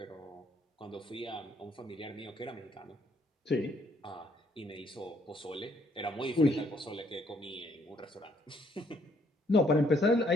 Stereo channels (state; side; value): normal; both; correlation 0.69